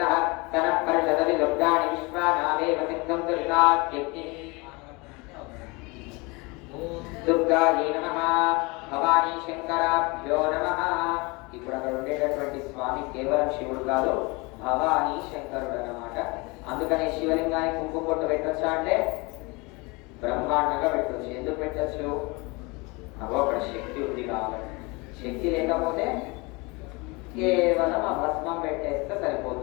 తనః పరిషదవి దుర్గాణి విశ్వానావేవ సిద్ధం దుర్గాత్యక్తి. దుర్గాయే నమః, భవానీ శంకరాభ్యో నమః. ఇప్పుడు అక్కడ ఉండేటటువంటి స్వామి కేవలం శివుడు కాదు, భవానీ శంకరుడు అన్నమాట. అందుకనే శివలింగానికి కుంకుమ బొట్టు పెట్టొచ్చా అంటే బ్రహ్మాండంగా పెట్టొచ్చు. ఎందుకు పెట్టచ్చు? అగో అక్కడ శక్తి ఉంది కాబట్టి. శక్తి లేకపోతే కేవలం ఆ భస్మం పెట్టేస్తే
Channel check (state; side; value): quieter; right; 26.6 dB